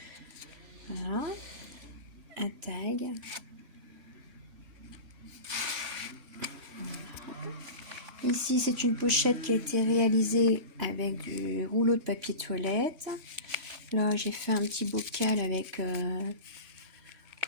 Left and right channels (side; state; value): left; late; 3.0 ms